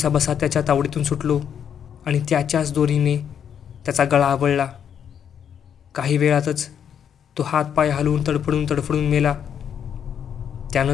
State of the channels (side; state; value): right; quieter; 8.4 dB